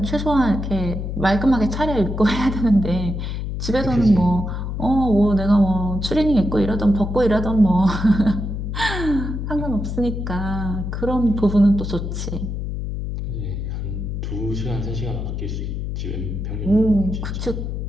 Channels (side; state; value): left; noise; hum, 4 dB below the sound